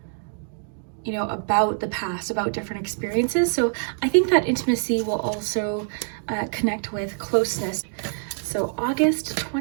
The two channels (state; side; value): silent; left; 58 dB below the other